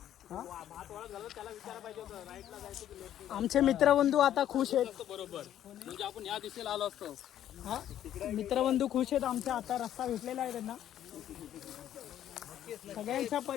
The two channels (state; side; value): quieter; right; 11.2 dB